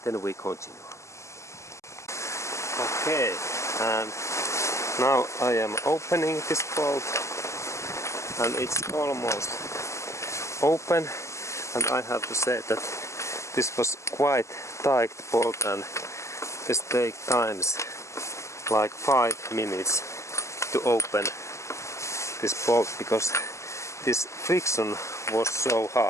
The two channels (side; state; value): right; late; 0.14 ms